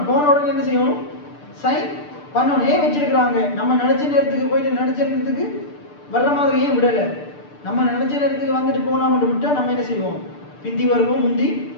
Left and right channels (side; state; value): right; late; 6.8 ms